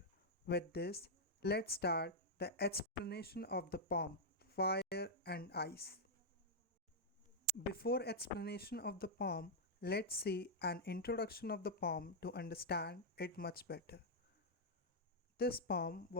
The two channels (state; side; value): normal; both; correlation -0.05